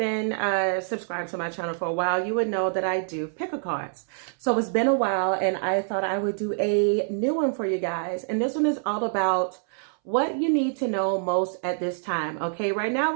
subscribed to my channel for a while, you would know that I do pick a cards. So it's been a while and I thought I would do a new one for you guys. And this one is all about what you need to know most at this time. Okay, right now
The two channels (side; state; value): left; silent; 61 dB below the other